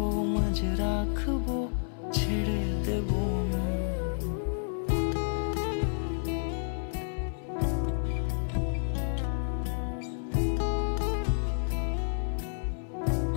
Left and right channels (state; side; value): silent; right; 58 dB below the other